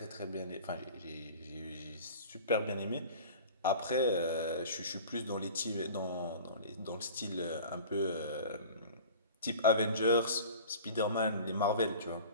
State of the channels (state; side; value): inverted; both; correlation -0.41